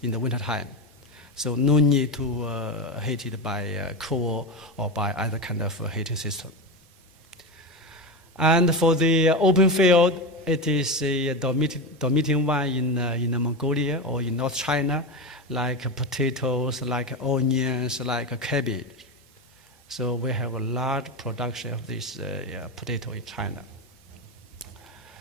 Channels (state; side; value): normal; both; correlation 0.18